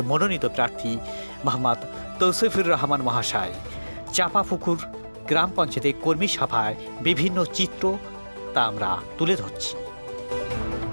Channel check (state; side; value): inverted; both; correlation -1.00